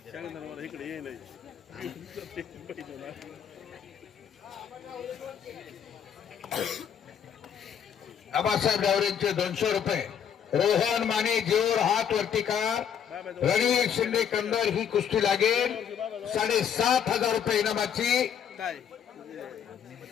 आबासाहेब गावरेंचे 200 रुपये, रोहन माने जेऊर हात वरती कार, रणवीर शिंदे कंदर ही कुस्ती लागेल. 7,500 रुपये इनामाची.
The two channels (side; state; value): right; quieter; 8.2 dB